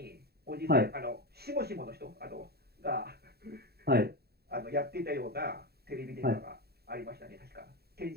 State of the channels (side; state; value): left; late; 0.46 ms